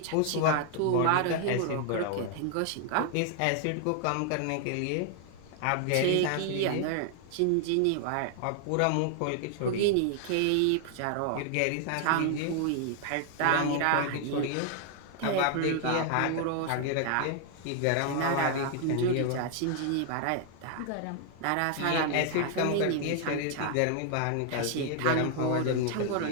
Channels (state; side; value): different; both; correlation 0.00